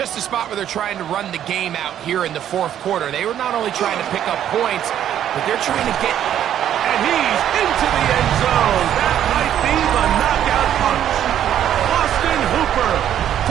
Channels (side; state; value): left; quieter; 10.5 dB